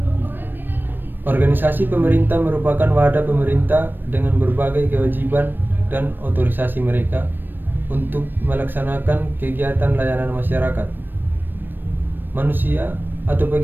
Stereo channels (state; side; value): late; left; 0.094 ms